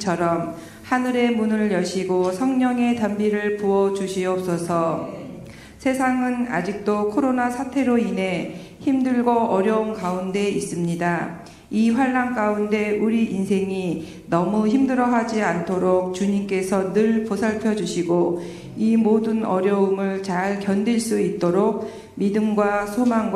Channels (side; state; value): both; identical; correlation 1.00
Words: 하늘의 문을 여시고 성령의 단비를 부어 주시옵소서. 세상은 아직도 코로나 사태로 인해 힘들고 어려운 가운데 있습니다. 이 환난 가운데 우리 인생이 너무 힘들어하지 않도록 주님께서 늘 보살펴 주시고 이 모든 어려움을 잘 견딜 수 있도록 믿음과